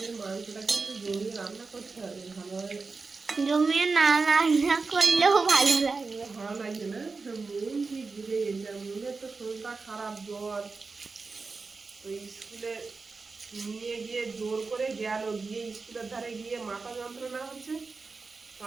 মাংসটাকে একটু জমিয়ে রান্না করতে হবে ভালোভাবে। জমিয়ে না রান্না করলেও ভালো লাগবে। ভালো লাগছে না? মন ঠিক বুঝে গেছে। মনের তো শরীরটা খারাপ, জ্বর। তো স্কুলে নিয়ে গিয়ে জোর করে গেল, গিয়ে স্কুলের ধারে গিয়ে মাথা যন্ত্রণা হচ্ছে।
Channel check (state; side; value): quieter; left; 4.3 dB